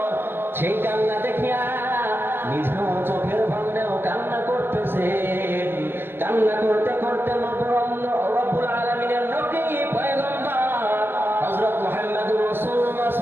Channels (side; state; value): left; late; 0.10 ms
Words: সেই কান্না দেখিয়া নিজেও চোখের ভাঙলেও কান্না করতেছে। কান্না করতে করতে রব্বুল আলামিনের নবী পয়গম্বর হযরত মুহাম্মদুর রাসূলুল্লাহ